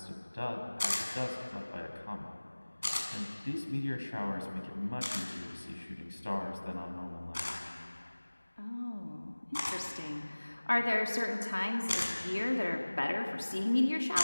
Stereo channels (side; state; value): both; inverted; correlation -1.00